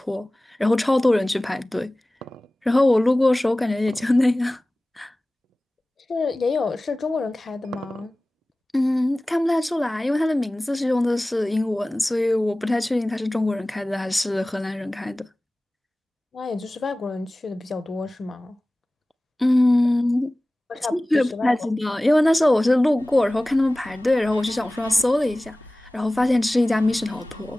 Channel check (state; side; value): normal; both; correlation 0.98